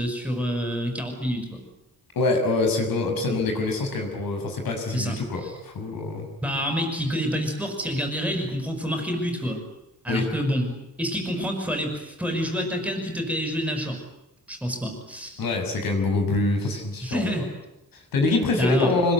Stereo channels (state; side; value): normal; both; correlation 0.51